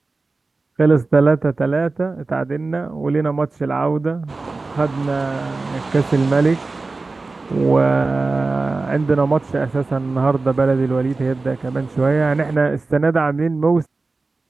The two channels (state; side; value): quieter; left; 3.6 dB